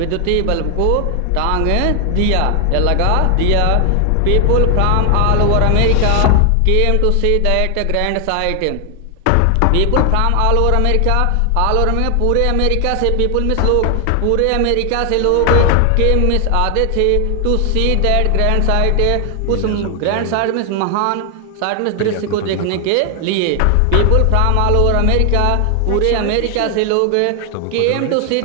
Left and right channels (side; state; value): both; different; correlation 0.00